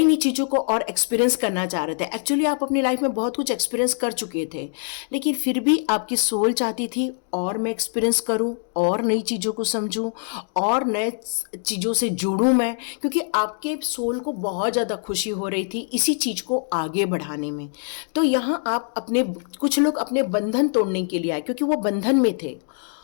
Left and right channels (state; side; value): silent; right; 63 dB below the other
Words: नई चीज़ों को और एक्सपीरियंस करना चाह रहे थे। एक्चुअली आप अपनी लाइफ में बहुत कुछ एक्सपीरियंस कर चुके थे, लेकिन फिर भी आपकी सोल चाहती थी और मैं एक्सपीरियंस करूँ, और नई चीज़ों को समझूँ, और नए चीज़ों से जुड़ूँ मैं, क्योंकि आपके सोल को बहुत ज़्यादा खुशी हो रही थी इसी चीज़ को आगे बढ़ाने में। तो यहाँ आप अपने, कुछ लोग अपने बंधन तोड़ने के लिए आए क्योंकि वो बंधन में थे,